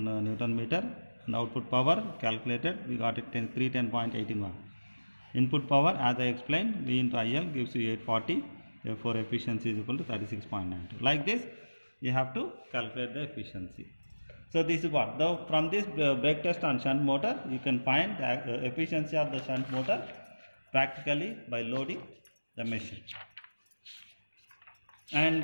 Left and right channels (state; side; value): inverted; both; correlation -1.00